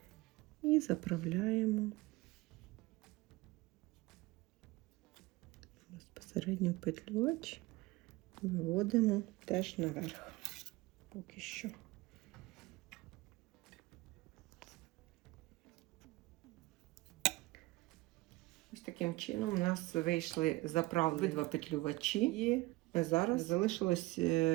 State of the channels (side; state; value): left; quieter; 20.6 dB